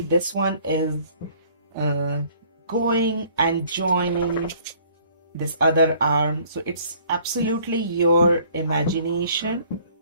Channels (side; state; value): both; inverted; correlation -0.57